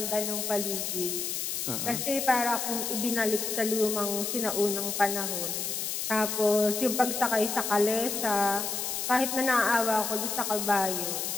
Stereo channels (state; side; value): noise; left; hiss, 2 dB below the sound